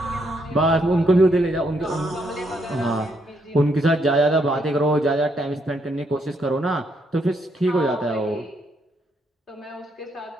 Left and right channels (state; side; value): normal; both; correlation 0.75